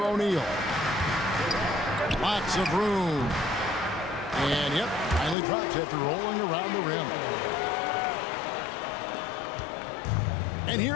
O'Neal. Lots of room. And yep, finally drops after rolling around the rim. And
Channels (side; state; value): right; drops out; at 5.4 s